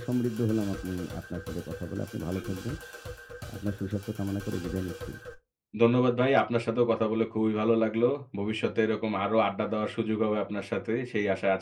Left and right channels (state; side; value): identical; both; correlation 1.00